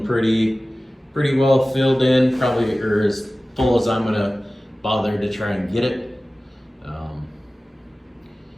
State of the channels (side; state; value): both; normal; correlation 0.97